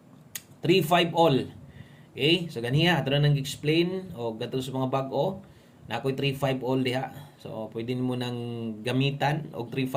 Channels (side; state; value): both; identical; correlation 1.00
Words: 3-5 all. Okay? So ganiya ato na nang explain og gato sa mga bag-o. Na ako'y 3-5 all diha. So, pwede mo nang gamitan og